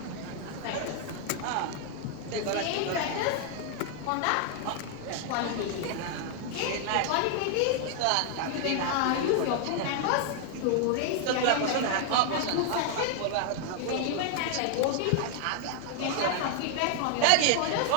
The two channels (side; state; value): both; different; correlation 0.00